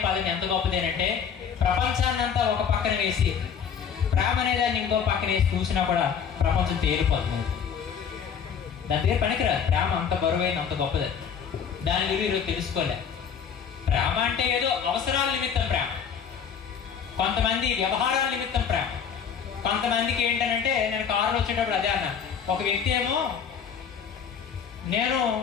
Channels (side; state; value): right; quieter; 7.2 dB